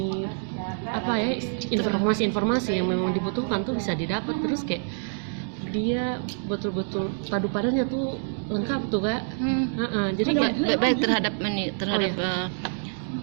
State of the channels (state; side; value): silent; left; digital silence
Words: apa ya, informasi yang memang dibutuhkan tuh bisa didapat. Terus kayak dia betul-betul padu padannya tuh lengkap tuh Kak. Jadi kayak baik terhadap